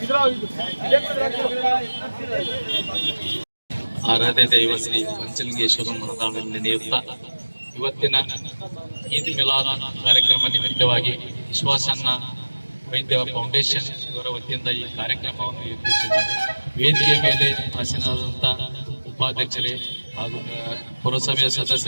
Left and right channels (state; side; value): inverted; both; correlation -1.00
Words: ಆರಾಧ್ಯ ದೈವ ಶ್ರೀ ಪಂಚಲಿಂಗೇಶ್ವರ ಮನದಾಳದಲ್ಲಿ ನಡೆಯುತ್ತಾ ಇವತ್ತಿನ ಈದ್ ಮಿಲಾದ್ ಕಾರ್ಯಕ್ರಮ ನಿಮಿತ್ತವಾಗಿ ವಿಶ್ವಾಸನ್ನ ವೈದ್ಯ ಫೌಂಡೇಶನ್ ಇವರ ವತಿಯಿಂದ ಈ ಕಾರ್ಯಕ್ರಮವನ್ನು ಏರ್ಪಡಿಸಿದ್ದಾರೆ. ವೇದಿಕೆ ಮೇಲೆ ಆಸೀನರಾದಂಥ ಉಪಾಧ್ಯಕ್ಷರೇ ಹಾಗೂ ಪುರಸಭೆಯ